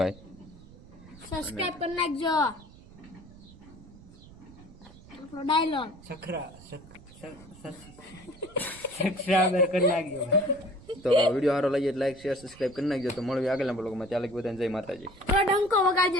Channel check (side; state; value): right; noise; rumble, 20 dB below the sound